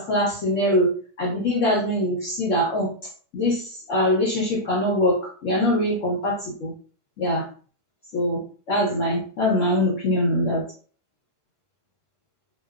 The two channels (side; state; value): both; normal; correlation -0.11